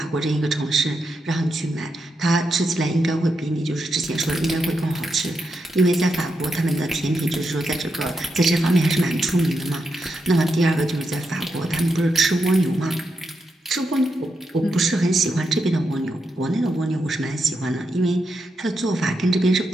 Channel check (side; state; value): both; normal; correlation 0.84